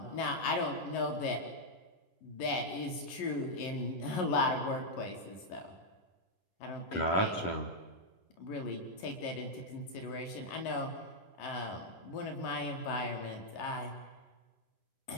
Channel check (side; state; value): right; late; 11 ms